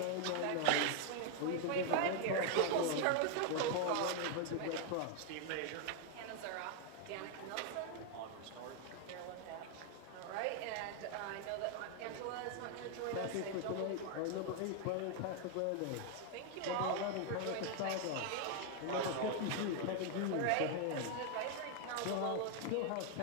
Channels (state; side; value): different; both; correlation 0.00